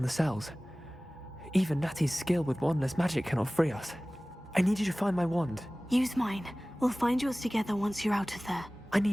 the cells. Even Natty's skill with wandless magic cannot free us. I need you to find my wand. Use mine. We'll find yours together once you're out of there. I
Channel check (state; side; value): normal; both; correlation 0.98